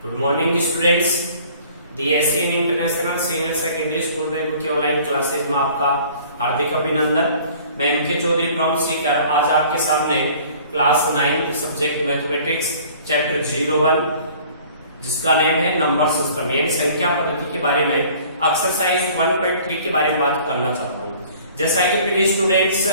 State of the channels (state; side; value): inverted; both; correlation -0.51